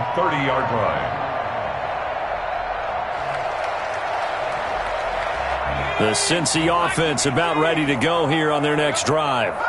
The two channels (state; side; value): identical; both; correlation 1.00